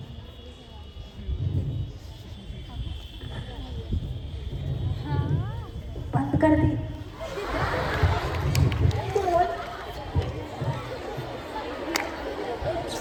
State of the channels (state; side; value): identical; both; correlation 1.00